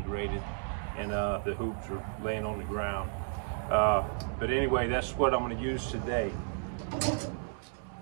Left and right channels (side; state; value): left; silent; 56 dB below the other